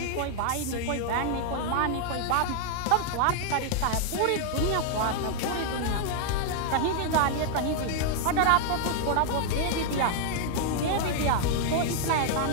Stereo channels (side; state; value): both; different; correlation 0.00